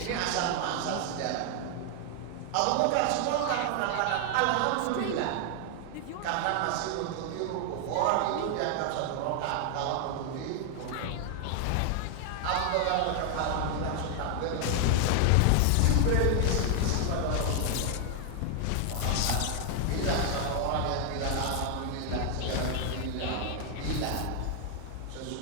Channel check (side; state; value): both; different; correlation 0.00